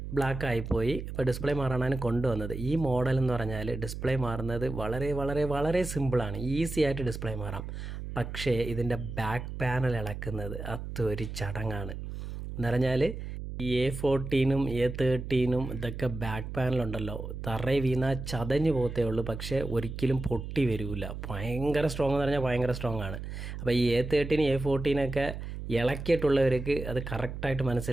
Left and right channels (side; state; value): right; noise; hum, 7 dB below the sound